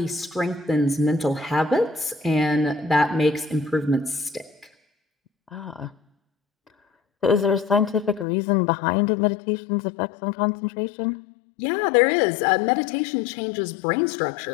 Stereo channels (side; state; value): right; drops out; at 8.2 s